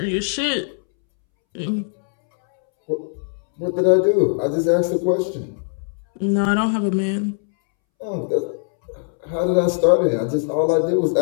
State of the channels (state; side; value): silent; right; 65 dB below the other